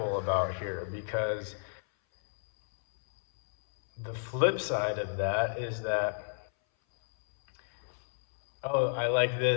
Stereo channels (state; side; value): silent; right; 57 dB below the other